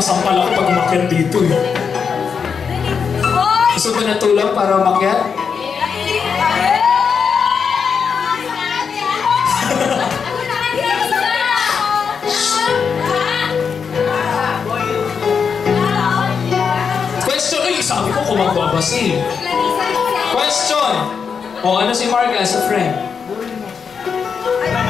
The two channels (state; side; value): quieter; right; 6.2 dB